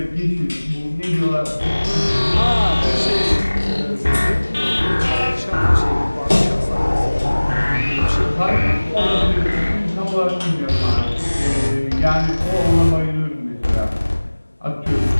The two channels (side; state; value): both; inverted; correlation -1.00